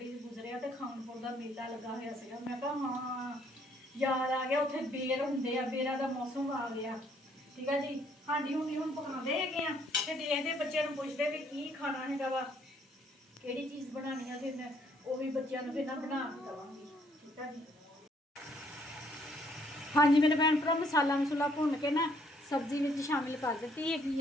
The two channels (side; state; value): both; normal; correlation 0.66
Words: गुजरिया तो खानपुर दा मेला लगा होया सीगा। मैं कहा हाँ याद आ गया, उत्थे बेर हुंदे आ, बेरां दा मौसम आ गया, ठीक है जी। हांडी हुंडी हुण पकांदे हैगे आ ते देखदे बच्चों नूं पुछदे भी की खाना हैगा वा, किहड़ी चीज़ बनानी है, फिर मैं वो भी बच्चों नूं फिर ना बना के दवांगी, ठीक है जी। हाँ जी मेरे भैन भरा मसाला मसूला भुन के ना सब्जी में शामिल कर दी हैगी